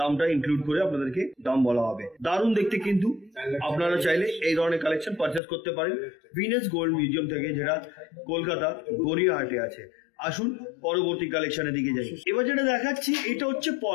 ইনক্লুড করে আপনাদেরকে দাম বলা হবে। দারুণ দেখতে কিন্তু। আপনারা চাইলে এই ধরনের কালেকশন পারচেস করতে পারেন ভিনাস গোল্ড মিউজিয়াম থেকে, যেটা কলকাতা গড়িয়াহাটে আছে। আসুন পরবর্তী কালেকশনের দিকে যাই। এবার যেটা দেখাচ্ছি এটা হচ্ছে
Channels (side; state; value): right; drops out; at 5.4 s